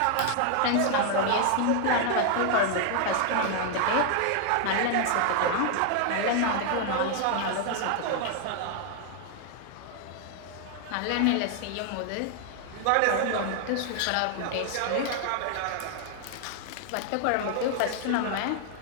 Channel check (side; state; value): both; different; correlation 0.00